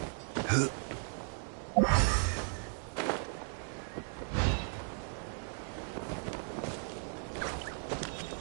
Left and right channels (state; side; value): silent; left; 54 dB below the other